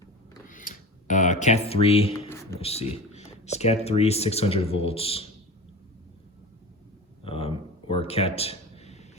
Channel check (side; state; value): both; normal; correlation 0.32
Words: Cat 3, let's see, it's Cat 3 600 volts, or Cat